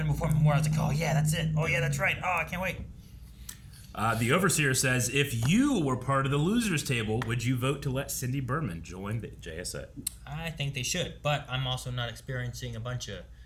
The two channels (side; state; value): both; identical; correlation 1.00